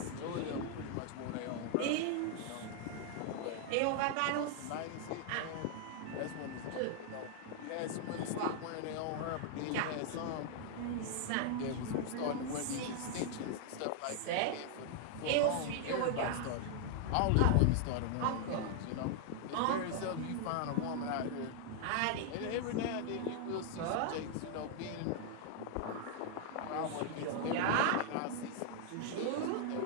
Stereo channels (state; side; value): different; both; correlation 0.00